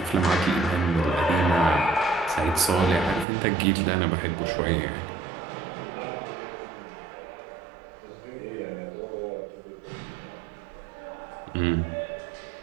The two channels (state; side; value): drops out; left; at 3.2 s